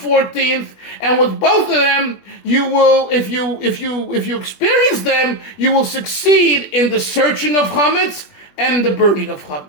14th. And with both of them, you will, if you experience them, you will succeed in the searching of chametz and the burning of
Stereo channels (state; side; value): late; right; 20 ms